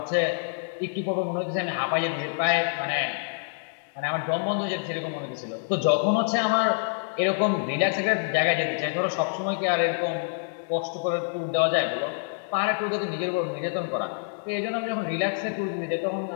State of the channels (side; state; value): right; silent; digital silence